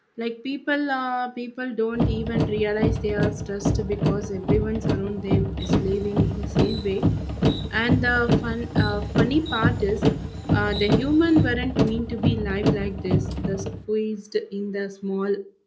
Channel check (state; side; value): identical; both; correlation 1.00